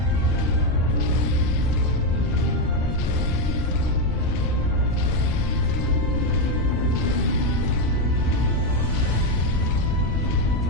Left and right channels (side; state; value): both; normal; correlation 0.07